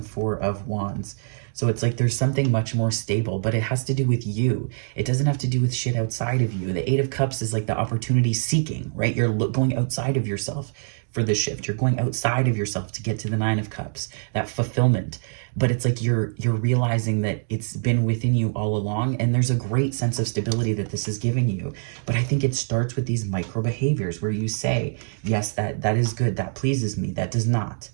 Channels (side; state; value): left; silent; digital silence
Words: Four of Wands. So it's like there's something much more stable, but it has to do with you. It doesn't have to do with shit outside of you. The Eight of Cups is like the opportunity seeking, right? You're going outside of yourself for the shift. You're going outside of yourself to get to the Nine of Cups, that fulfillment. But it's like you're realizing that it's been within you all along, and there's a great sense of stability that this is giving you. But I think it starts with these micro behaviors where you say, yes, that is good, that pleases me, that does not.